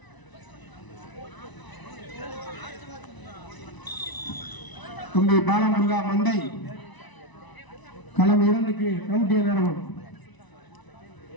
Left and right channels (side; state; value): right; late; 1.0 ms